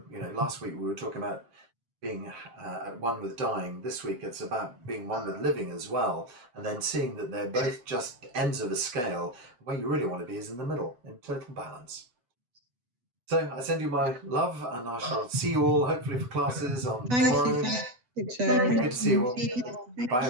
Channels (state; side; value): late; left; 8.2 ms